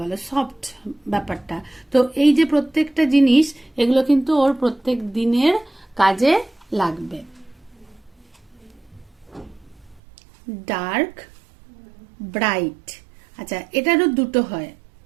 সফট ব্যাপারটা। তো এই যে প্রত্যেকটা জিনিস, এগুলো কিন্তু ওর প্রত্যেক দিনের কাজে লাগবে। Dark, bright. আচ্ছা, এটারও দুটো হয়,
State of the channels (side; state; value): left; drops out; at 10.0 s